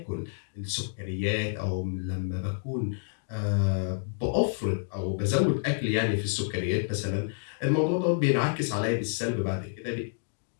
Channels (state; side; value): silent; right; digital silence